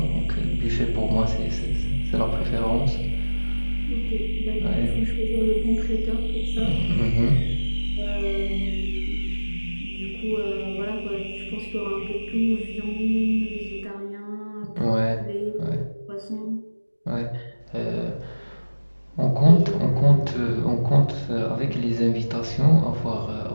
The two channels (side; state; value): both; inverted; correlation -1.00